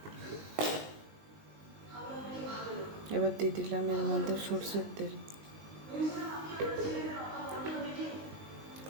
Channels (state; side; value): late; left; 19 ms